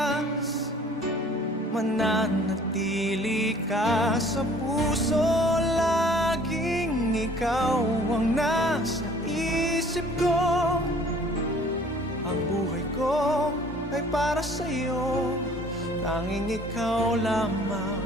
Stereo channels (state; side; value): normal; both; correlation 0.53